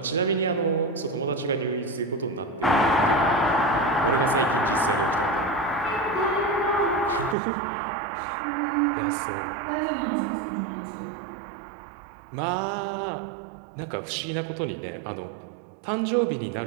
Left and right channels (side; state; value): left; drops out; at 7.4 s